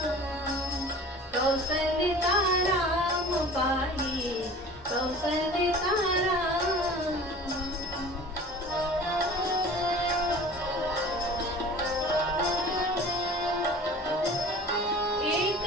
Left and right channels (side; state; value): both; normal; correlation 0.43